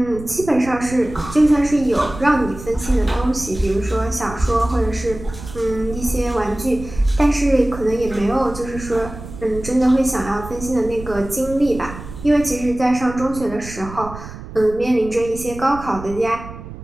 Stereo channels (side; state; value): right; noise; rumble, 13 dB below the sound